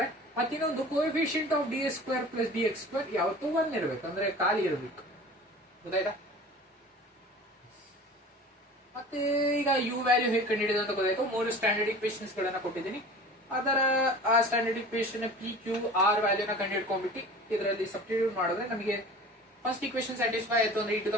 ಮತ್ತೆ ಇನ್ನೊಂದು coefficient of ds² plus dx² ಯಾವತ್ತೂ 1 ಇರಬೇಕು, ಅಂದ್ರೆ ಖಾಲಿ ಇರಬೇಕು. ಗೊತ್ತಾಯ್ತಾ? ಮತ್ತೆ ಈಗ u ವ್ಯಾಲ್ಯೂ ಹೇಗೆ ಕಂಡುಹಿಡಿಯೋದು ಅಂತ ಗೊತ್ತಾಯ್ತು. ಮೂರು ಸ್ಟ್ಯಾಂಡರ್ಡ್ ಇಕ್ವೇಷನ್ಸ್ ಗಳನ್ನ ಕೊಟ್ಟಿದ್ದೀನಿ. ಅದರ ಆ standard equation p q r ವ್ಯಾಲ್ಯೂನ ಕಂಡುಹಿಡ್ಕೊಂಡ್ಬಿಟ್ಟು ಇದರಲ್ಲಿ ಸಬ್ಸ್ಟಿಟ್ಯೂಟ್ ಮಾಡಿದ್ರೆ ನಮಗೆ ಫಸ್ಟ್ ಇಕ್ವೇಷನ್ ಸ್ಯಾಟಿಸ್ಫೈ ಆಯ್ತು ಅಂದ್ರೆ e to the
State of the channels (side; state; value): both; normal; correlation 0.40